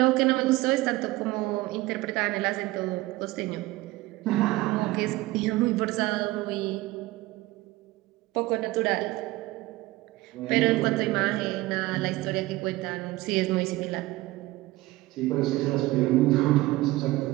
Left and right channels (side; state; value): left; quieter; 18.9 dB